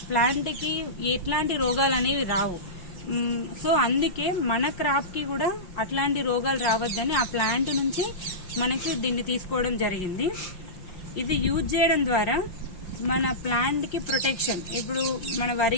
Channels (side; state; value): right; late; 5.7 ms